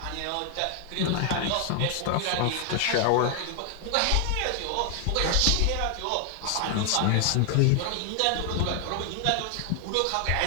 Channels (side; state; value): both; different; correlation 0.00